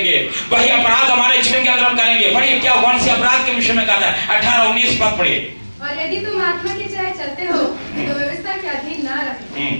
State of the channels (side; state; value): both; inverted; correlation -1.00